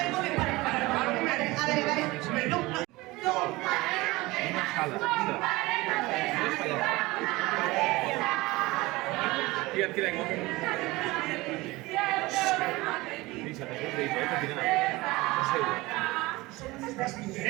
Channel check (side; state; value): left; quieter; 21.1 dB